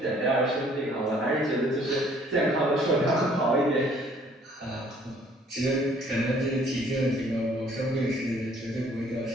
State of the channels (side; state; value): both; normal; correlation 0.59